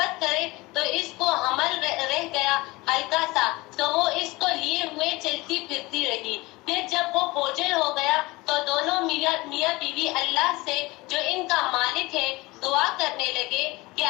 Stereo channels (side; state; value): right; quieter; 22.1 dB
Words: کرے تو اس کو حمل رہ گیا ہلکا سا، تو وہ اس کو لیے ہوئے چلتی پھرتی رہی۔ پھر جب وہ بوجھل ہو گیا تو دونوں میاں بیوی اللہ سے جو ان کا مالک ہے دعا کرنے لگے کہ